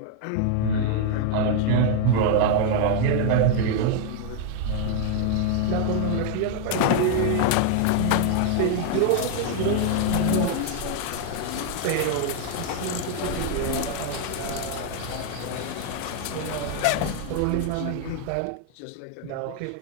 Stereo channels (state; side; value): different; both; correlation 0.00